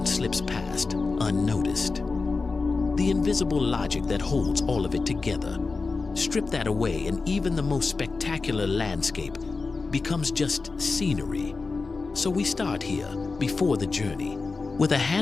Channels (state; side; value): quieter; right; 4.1 dB